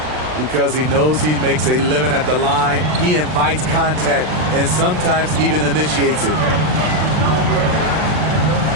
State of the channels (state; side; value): late; left; 39 ms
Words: Because he knows he makes a living at the line, he invites contact and sometimes even initiates it.